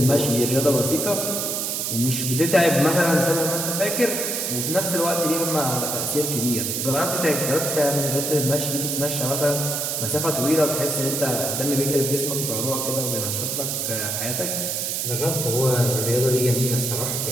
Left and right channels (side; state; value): right; noise; hiss, 1 dB below the sound